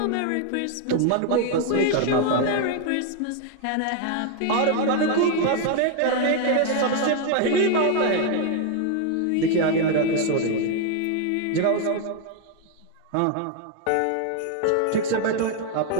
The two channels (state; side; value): different; both; correlation 0.00